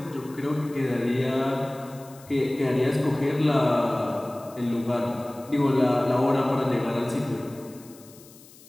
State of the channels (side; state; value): left; noise; hiss, 23 dB below the sound